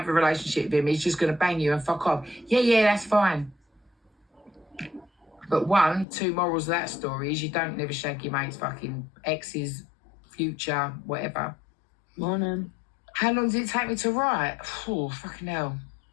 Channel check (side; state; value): right; drops out; at 6.1 s